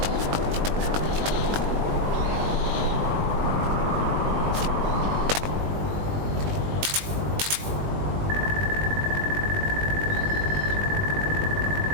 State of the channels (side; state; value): left; late; 20 ms